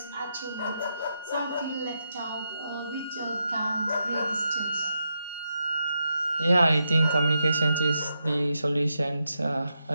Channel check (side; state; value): both; inverted; correlation -0.84